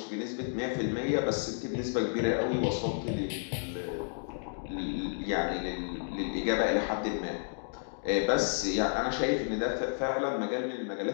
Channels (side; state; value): right; silent; digital silence